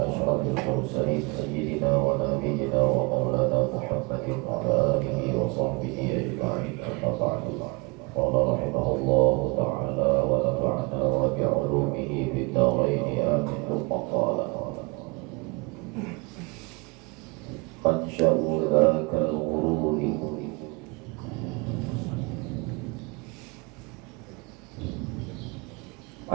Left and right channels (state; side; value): quieter; left; 29.4 dB